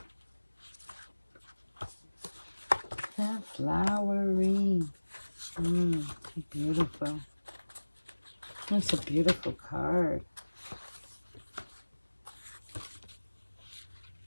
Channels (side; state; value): both; inverted; correlation -1.00